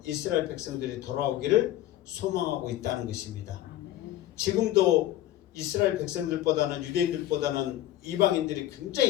이스라엘 백성들이 돌아오기를 소망하고 있다는 것입니다. 지금도 이스라엘 백성들보다는 유대인들보다는 이방인들이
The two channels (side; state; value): right; quieter; 13.7 dB